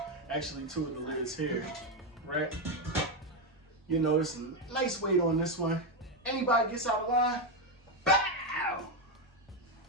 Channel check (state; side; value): normal; both; correlation 0.07